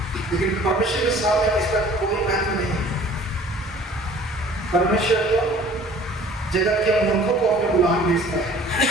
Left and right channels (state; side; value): normal; both; correlation 0.50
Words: लेकिन परमेश्वर के सामने इसका कोई महत्व नहीं है। परमेश्वर तो जगत के मूर्खों को अपने गुलाम भेजता है।